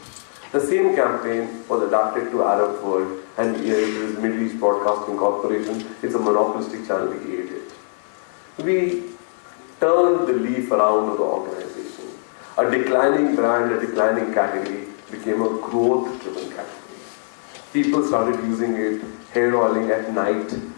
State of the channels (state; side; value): silent; right; digital silence